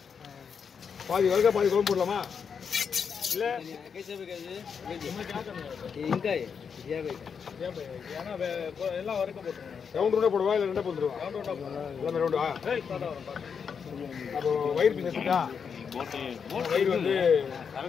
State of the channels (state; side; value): quieter; right; 6.5 dB